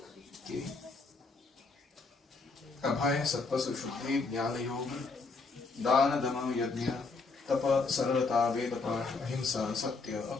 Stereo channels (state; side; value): quieter; right; 4.1 dB